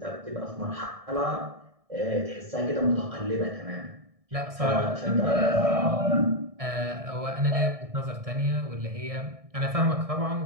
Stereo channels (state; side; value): late; left; 1.6 ms